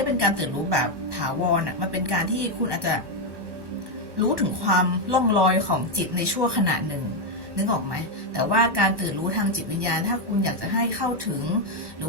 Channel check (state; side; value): late; left; 1.1 ms